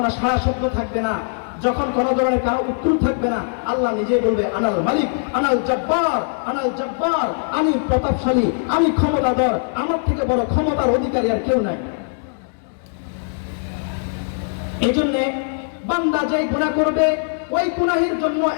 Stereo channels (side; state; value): right; silent; digital silence